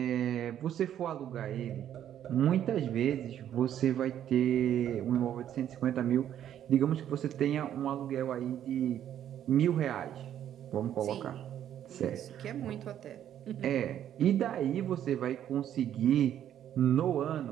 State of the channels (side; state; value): left; quieter; 10.6 dB